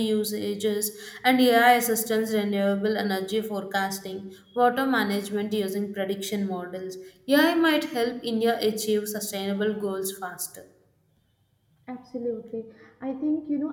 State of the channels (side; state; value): both; identical; correlation 1.00